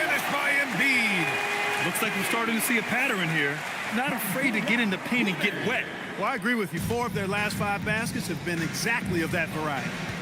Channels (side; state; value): both; identical; correlation 1.00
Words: by Embiid. Looks like we're starting to see a pattern here. Not afraid to get in the paint and get wet. Well, I agree with you. 4 of their last 5 baskets have been exactly of that variety.